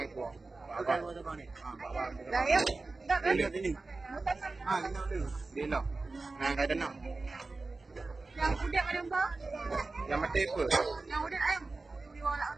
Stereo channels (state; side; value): quieter; left; 3.6 dB